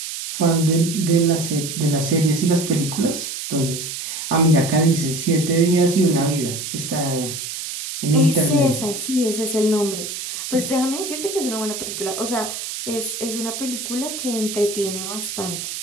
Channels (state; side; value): noise; right; hiss, 6 dB below the sound